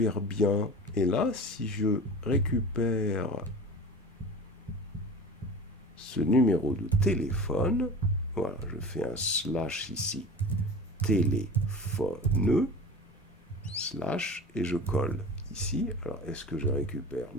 bien. Et là, si je récupère ce numéro de téléphone, voilà, je fais un slash ici, téléphone, slash, et je colle ici. Alors, est-ce que je récupère?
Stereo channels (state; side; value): normal; both; correlation 0.36